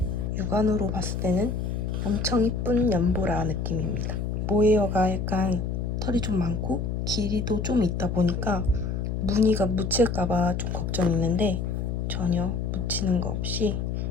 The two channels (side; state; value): left; noise; hum, 2 dB below the sound